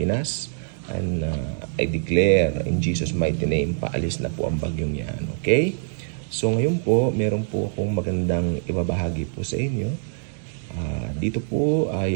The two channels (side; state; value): left; silent; 62 dB below the other